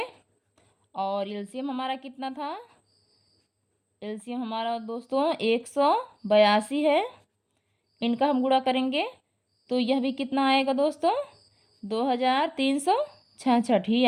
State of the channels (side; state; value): both; identical; correlation 1.00